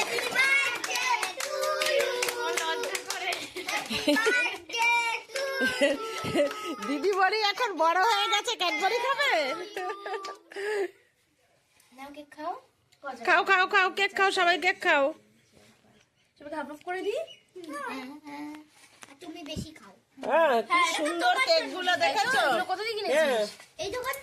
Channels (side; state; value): both; identical; correlation 1.00